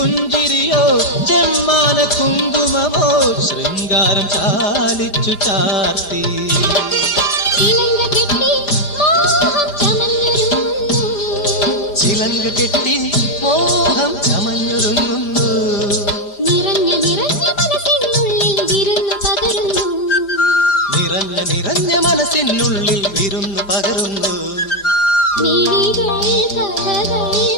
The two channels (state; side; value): late; right; 4.9 ms